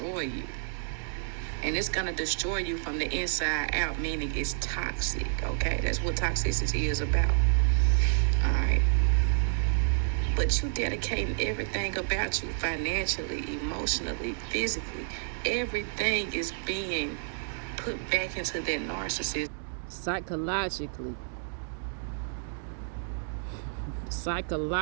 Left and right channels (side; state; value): left; silent; digital silence